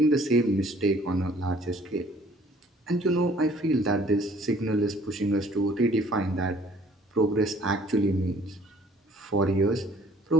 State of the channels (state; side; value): normal; both; correlation 0.56